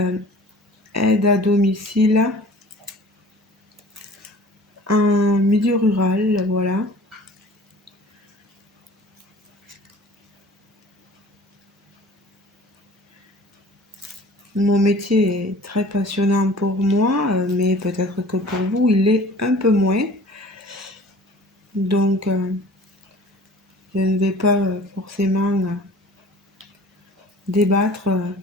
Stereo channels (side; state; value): both; normal; correlation 0.46